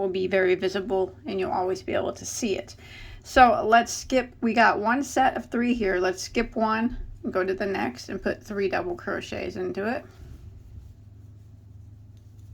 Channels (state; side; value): identical; both; correlation 1.00